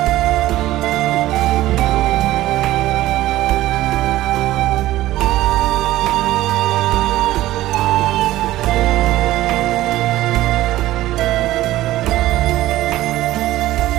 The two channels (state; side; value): quieter; left; 15.6 dB